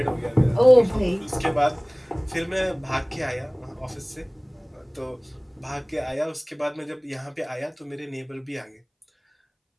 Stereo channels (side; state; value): both; identical; correlation 1.00